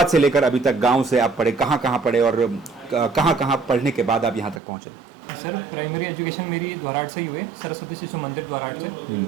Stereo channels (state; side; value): drops out; left; at 4.6 s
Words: से लेकर अभी तक, गाँव से आप पढ़े, कहाँ पढ़े और कहाँ पढ़ने के बाद आप यहाँ तक पहुँचे? सर प्राइमरी एजुकेशन मेरी द्वाराट से ही हुई, सरस्वती शिशु मंदिर द्वाराट से